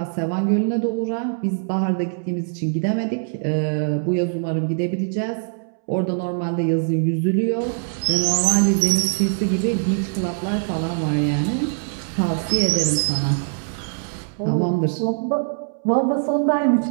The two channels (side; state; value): left; silent; 64 dB below the other